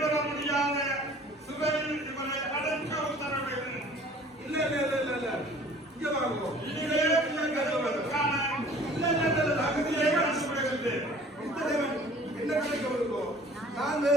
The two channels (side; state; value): both; normal; correlation 0.50